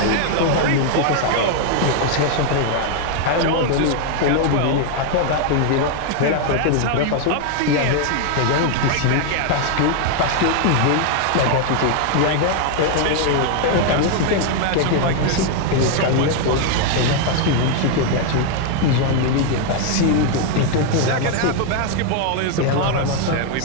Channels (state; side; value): different; both; correlation 0.00